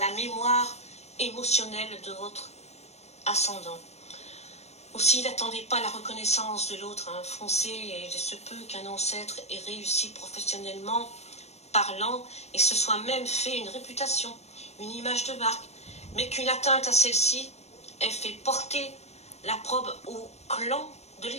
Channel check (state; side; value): late; right; 0.31 ms